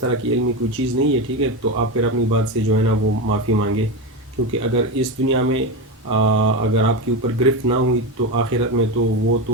کی علمی کوئی چیز نہیں ہے، ٹھیک ہے، تو آپ پھر اپنی بات سے جو ہے نا وہ معافی مانگے، کیونکہ اگر اس دنیا میں اگر آپ کے اوپر گرفت نہ ہوئی تو آخرت میں تو وہ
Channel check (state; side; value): normal; both; correlation 0.17